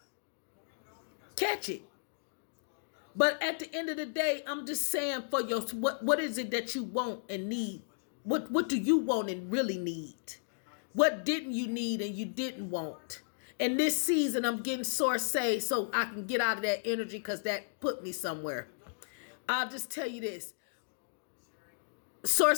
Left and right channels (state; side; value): silent; right; digital silence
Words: Catch it. But at the end of the day, I'm just saying for your what is it that you want and need? What do you want and really need? What didn't you need and you didn't want? And this season, I'm getting source say so I can get out of that energy because that put me somewhere. I'll just tell you this.